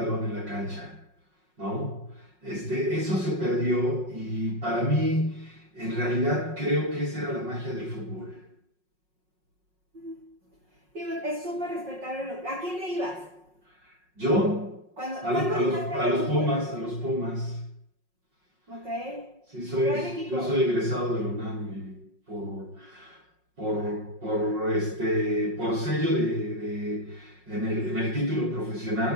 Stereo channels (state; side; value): late; left; 5.5 ms